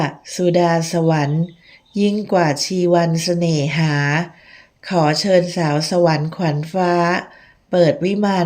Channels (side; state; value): both; identical; correlation 1.00